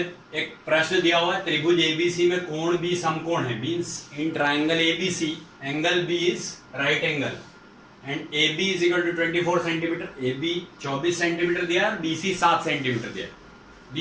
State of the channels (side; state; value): both; identical; correlation 1.00